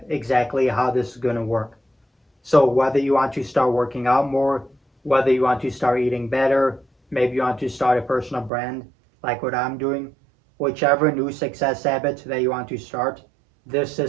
exactly how this is going to work. So whether you want to start working out more, whether you want to start eating better, maybe you want to start a personal brand like what I'm doing, whichever new success habit that you want to start, this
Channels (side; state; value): left; drops out; at 8.5 s